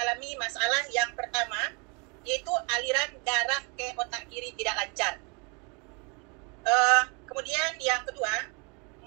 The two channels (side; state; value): left; quieter; 32.8 dB